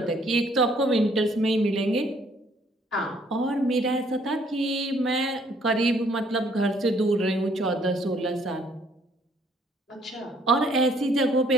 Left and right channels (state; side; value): normal; both; correlation 0.64